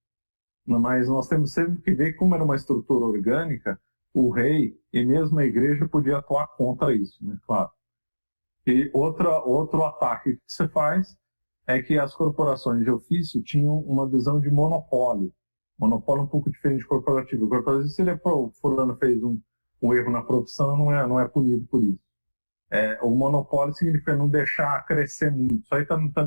Mas nós temos sempre que ver que, como era uma estrutura orgânica, o rei e mesmo a igreja podia atuar contra isso, né? Claro. E outro ataque que se faz é que as corporações de ofício tinham uma visão de monopólio. Monopólio um pouco diferente de corporativo. O corporativo, se o fulano fez um erro na profissão, não é punido por isso. O monopólio significa não deixar crescer muito. Isso aí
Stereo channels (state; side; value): inverted; both; correlation -1.00